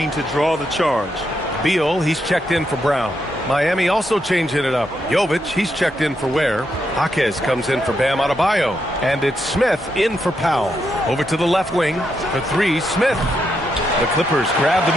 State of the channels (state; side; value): normal; both; correlation 0.81